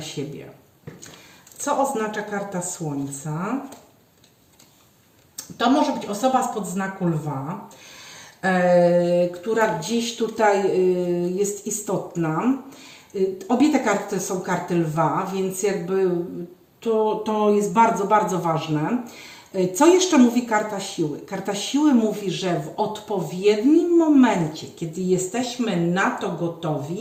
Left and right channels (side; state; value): both; identical; correlation 1.00